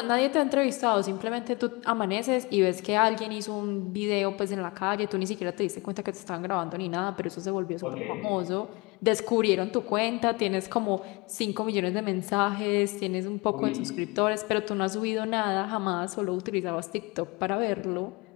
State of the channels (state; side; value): quieter; right; 26.4 dB